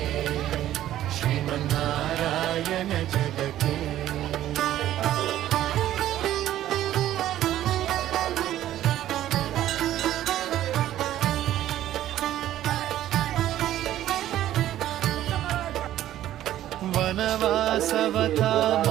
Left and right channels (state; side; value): quieter; left; 12.9 dB